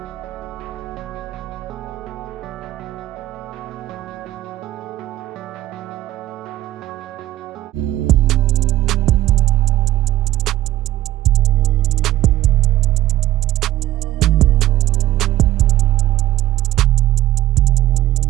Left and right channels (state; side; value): quieter; left; 14.1 dB